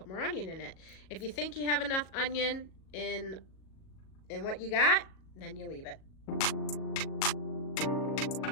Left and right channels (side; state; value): right; late; 37 ms